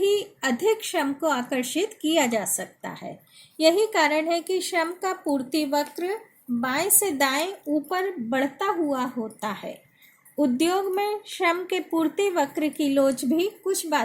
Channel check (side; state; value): both; identical; correlation 1.00